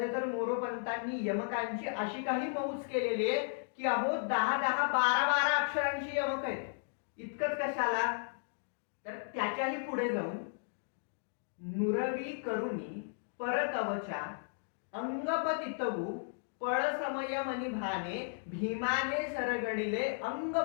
तर मोरोपंतांनी यमकांची अशी काही मौज केलेली आहे की अहो 10-10, 12-12 अक्षरांची यमक आहेत. इतकंच कशाला, तर त्याच्याही पुढे जाऊन नुरवी करुणी परकवचा अंगपतितवू पळ समयमनी भीमाने सरगडिले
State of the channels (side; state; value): right; silent; digital silence